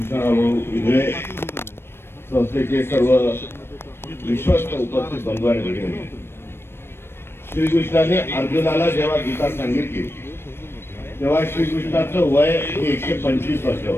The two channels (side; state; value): right; late; 0.12 ms